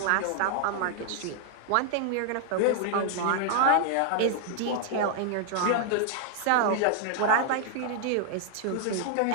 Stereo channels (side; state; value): both; different; correlation -0.01